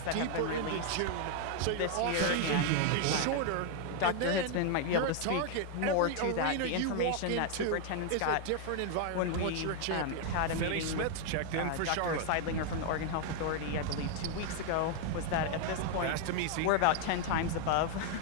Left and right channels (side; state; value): both; different; correlation 0.00